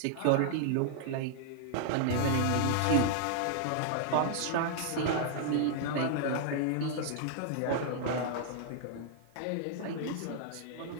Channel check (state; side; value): different; both; correlation -0.01